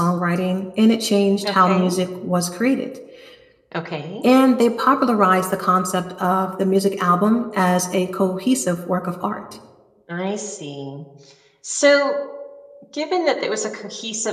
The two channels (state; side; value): identical; both; correlation 1.00